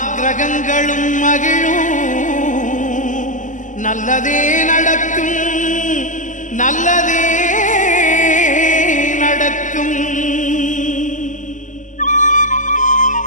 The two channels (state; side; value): late; right; 0.37 ms